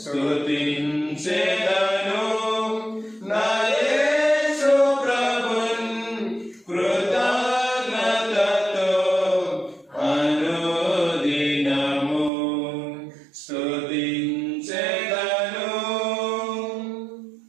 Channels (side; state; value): left; drops out; at 12.3 s